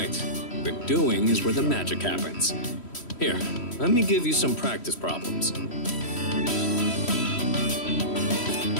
but doing is where the magic happens. Here, let me give you some practice problems.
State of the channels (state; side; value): late; right; 3.1 ms